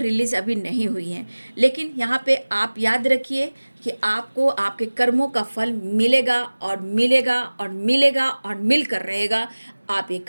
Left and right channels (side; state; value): both; inverted; correlation -1.00